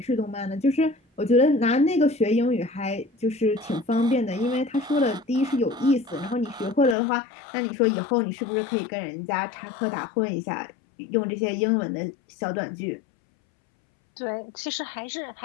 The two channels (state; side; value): drops out; right; at 7.0 s